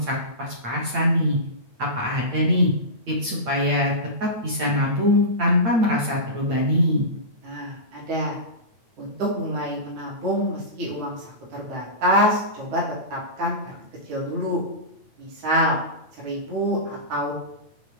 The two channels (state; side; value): late; left; 8.9 ms